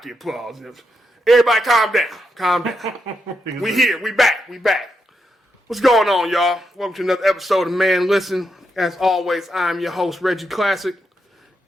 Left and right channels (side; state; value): both; normal; correlation 0.83